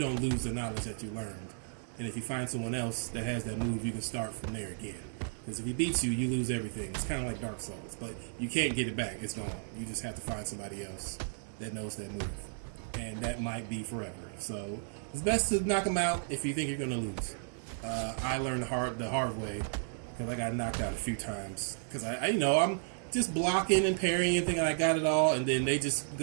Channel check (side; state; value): left; silent; 55 dB below the other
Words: lose the knowledge that you learned. And if you find someone else that has that move, you can start from there again. Because if he beats you, you lose everything. It's kind of like Dark Souls, but you can't get it back. It's gone. You just have to find somebody else that knows that move. And that might be forever. So it's best to knock him out if you think you're going to lose. I learned the hard way because I got knocked out a few times. Because I'm just blocking and parrying and thinking I got it all, and then they just